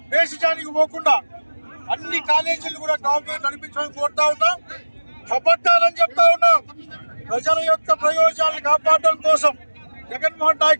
దేశానికి పోకుండా అన్ని కాలేజీలు కూడా గవర్నమెంట్ నడిపించమని కోరుతా ఉన్నాం. కబడ్డాలని చెప్తా ఉన్నాం. ప్రజల యొక్క ప్రయోజనాలను కాపాడడం కోసం జగన్మోహన్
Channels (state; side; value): inverted; both; correlation -1.00